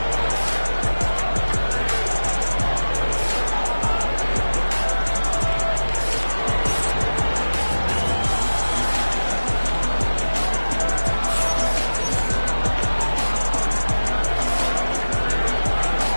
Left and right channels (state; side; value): inverted; both; correlation -1.00